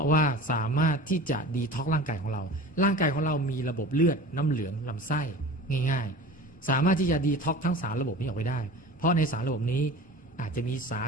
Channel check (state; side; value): normal; both; correlation 0.37